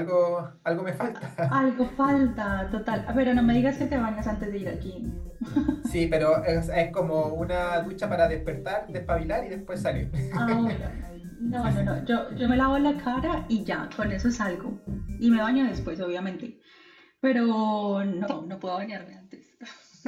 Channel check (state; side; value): identical; both; correlation 1.00